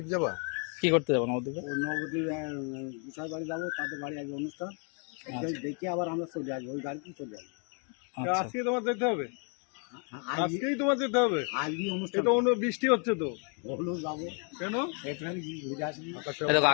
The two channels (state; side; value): quieter; right; 40.0 dB